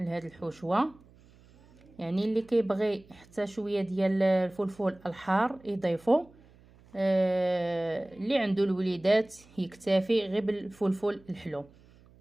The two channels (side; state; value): right; noise; hum, 26 dB below the sound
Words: الحشوه. يعني اللي كيبغي حتى شويه ديال الفلفل الحار يضيفو، اللي عنده الوليدات يكتفي غير بالفلفل الحلو.